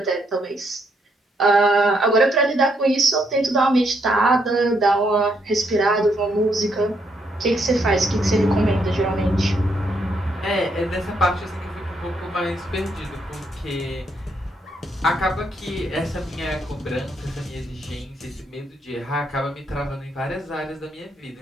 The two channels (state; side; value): normal; both; correlation 0.74